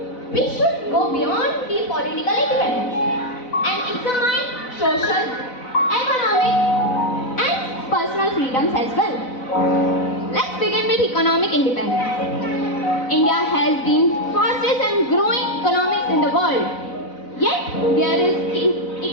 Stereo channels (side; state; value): right; late; 4.0 ms